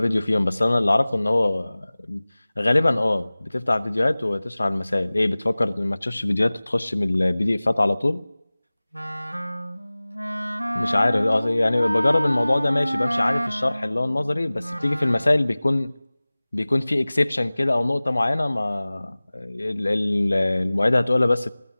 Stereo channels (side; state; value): both; inverted; correlation -0.99